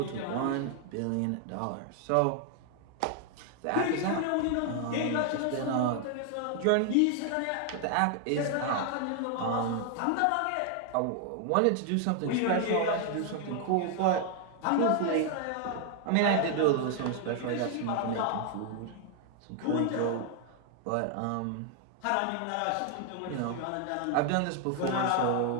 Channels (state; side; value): different; both; correlation 0.00